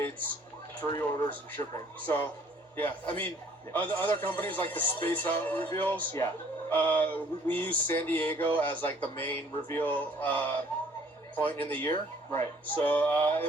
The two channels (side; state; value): both; normal; correlation 0.58